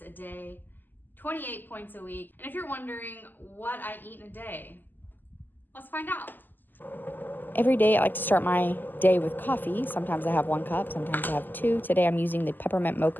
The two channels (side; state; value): right; late; 0.088 ms